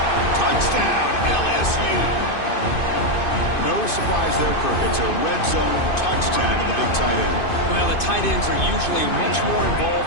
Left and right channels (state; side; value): late; right; 2.5 ms